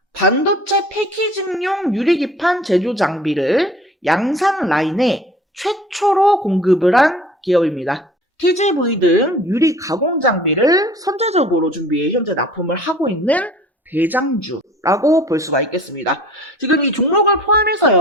반도체 패키징용 유리기판 제조 장비를 양산 라인에 최초로 공급을 한 기업입니다. TGV 등 유리 가공 장비를 선제적으로 준비해 현재 납품을 하고 있는 대장주라고 볼 수가 있겠습니다. 지금 이 종목을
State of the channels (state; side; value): normal; both; correlation 0.47